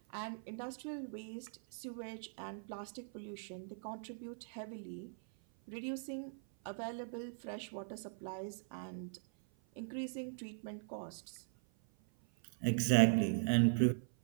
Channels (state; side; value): silent; left; 51 dB below the other